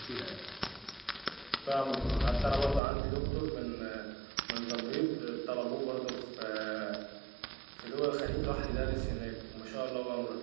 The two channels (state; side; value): drops out; left; at 2.8 s